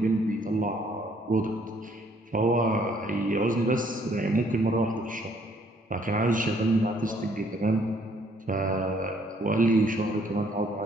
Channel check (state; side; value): normal; both; correlation 0.65